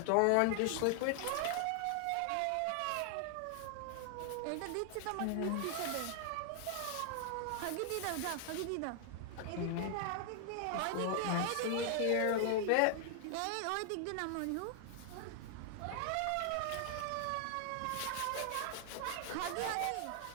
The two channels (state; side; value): different; both; correlation 0.00